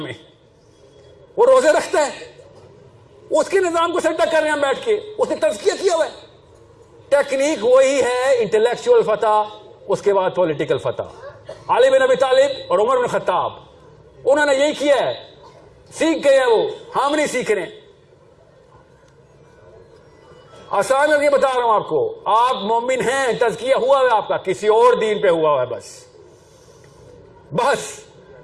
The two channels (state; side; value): identical; both; correlation 1.00